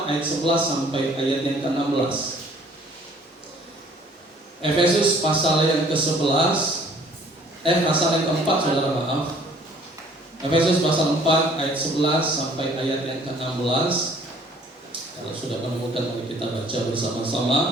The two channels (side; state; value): both; normal; correlation 0.56